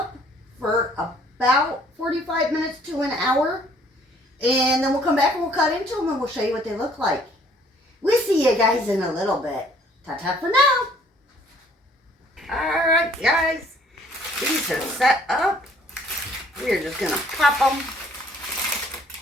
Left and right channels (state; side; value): normal; both; correlation 0.60